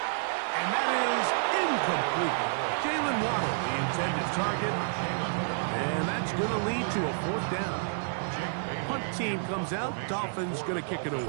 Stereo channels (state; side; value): silent; left; digital silence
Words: And that is incomplete. Jalen Waddle, the intended target. And that's going to lead to a 4th down. Punt team comes out. Dolphins going to kick it